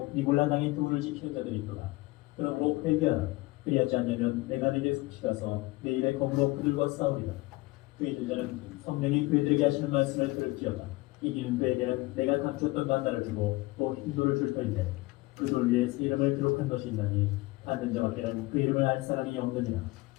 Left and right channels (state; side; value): quieter; right; 21.4 dB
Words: 니골라 당의 교훈을 지키는 자들이 있도다. 그러므로 회개하라. 그리하지 않으면 내가 네게 숙시가서 내 일에 검으로 그들과 싸우리라. 그의 제자는 성령이 그들에게 하시는 말씀을 들을지어다. 이기는 그에게는 내가 감추었던 만나를 주고 또 흰돌을 줄 터인데 그 돌 위에 새 이름을 기록한 것이 있나니 받는 자밖에는 그 이름을 알 사람이 없느니라.